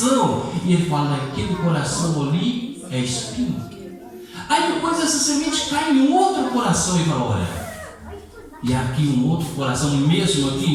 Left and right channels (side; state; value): both; identical; correlation 1.00